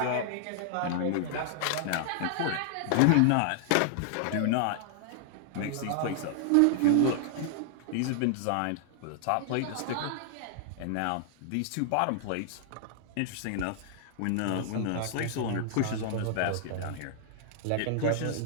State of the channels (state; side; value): different; both; correlation -0.01